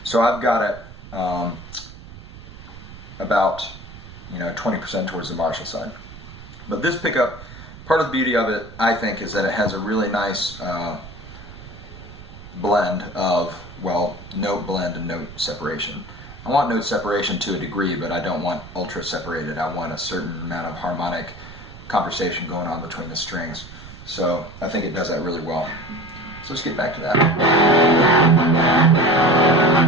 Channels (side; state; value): right; noise; rumble, 16 dB below the sound